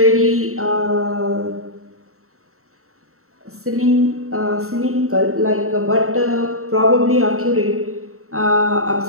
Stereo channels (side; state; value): left; late; 0.63 ms